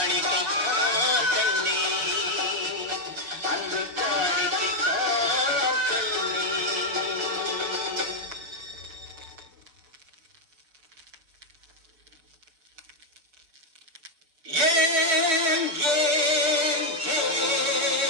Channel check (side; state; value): left; late; 6.8 ms